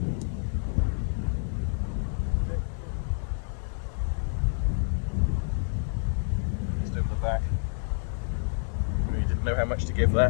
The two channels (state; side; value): silent; right; digital silence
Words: Just over the back. Really didn't know how much to give